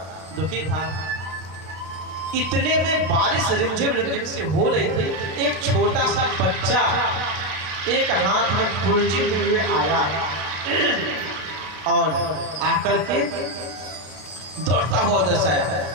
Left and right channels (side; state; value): left; late; 33 ms